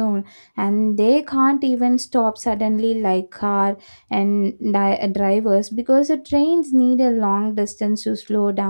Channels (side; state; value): both; inverted; correlation -1.00